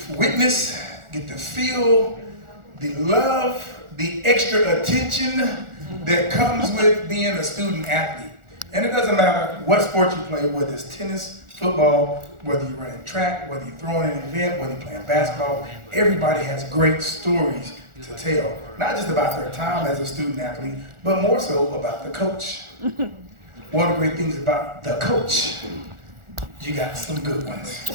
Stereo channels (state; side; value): late; left; 1.4 ms